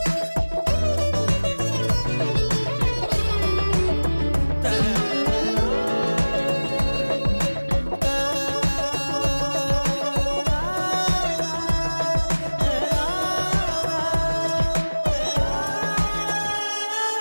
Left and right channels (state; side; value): inverted; both; correlation -1.00